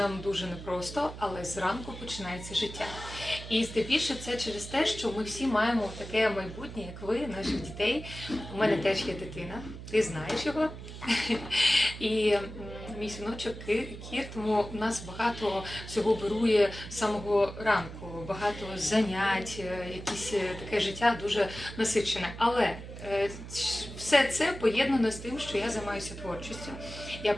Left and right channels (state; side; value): noise; right; hum, 11 dB below the sound